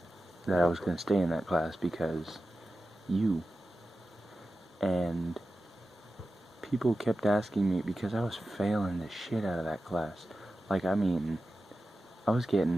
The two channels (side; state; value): both; normal; correlation 0.93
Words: that I was going to stay in that class because you. And people kept asking me, because I was failing the shit out of that class. Like, I mean, I was